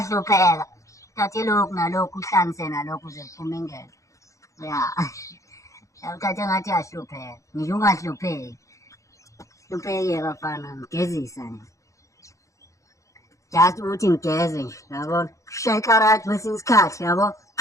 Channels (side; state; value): right; late; 0.15 ms